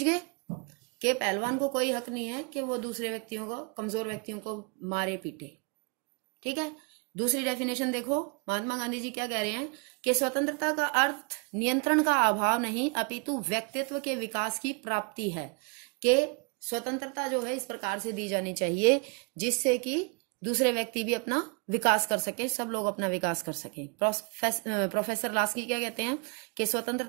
गए? कि पहलवान को कोई हक नहीं है कि वो दूसरे व्यक्तियों को, कमजोर व्यक्तियों को मारे पीटे। ठीक है, दूसरी डेफिनेशन देखो, महात्मा गांधी जी क्या कह रहे हैं कि स्वतंत्रता का अर्थ नियंत्रण का अभाव नहीं अपितु व्यक्तित्व के विकास की प्राप्ति है। कि स्वतंत्रता जो है इस प्रकार से दी जानी चाहिए जिससे कि दूसरे व्यक्ति भी अपना विकास कर सके, सब लोग अपना विकास कर सके। प्रोफेसर लास्की क्या कहते हैं कि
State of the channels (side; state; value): left; quieter; 33.7 dB